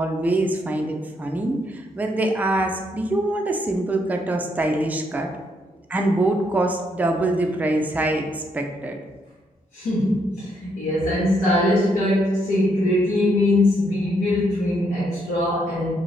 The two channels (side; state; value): both; normal; correlation 0.74